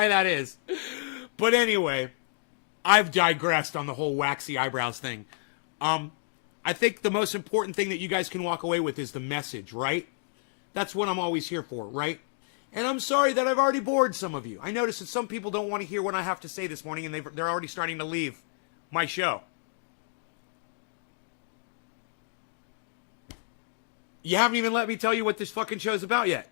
that is. But anyway, I've digressed on the whole waxy eyebrows thing. I think the most important thing that you guys can walk away with is the message, right? That's what I'm always here for, right? And I'm sorry that I've already bored some of you. I noticed that some people don't want to hear what I have to say this morning, and they're already starting to leave my show. You haven't even let me tell you what this fucking show's about yet.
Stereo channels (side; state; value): right; silent; digital silence